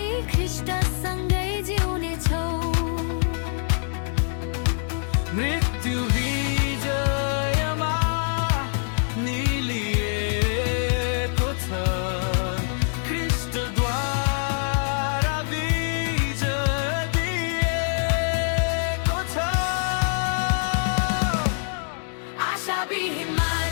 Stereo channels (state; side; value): silent; right; 62 dB below the other